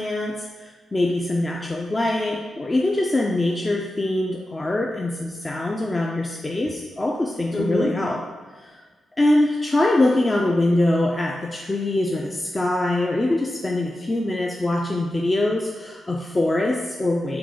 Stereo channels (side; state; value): both; normal; correlation 0.92